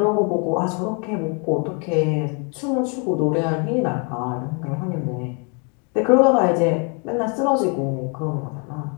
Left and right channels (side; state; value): right; quieter; 36.2 dB